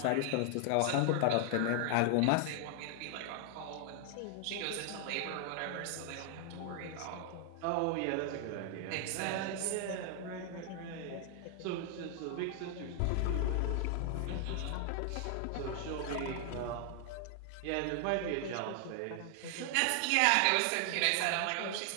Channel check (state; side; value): different; both; correlation 0.00